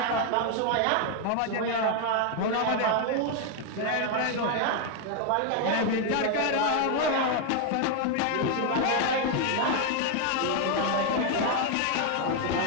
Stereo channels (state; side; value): different; both; correlation 0.01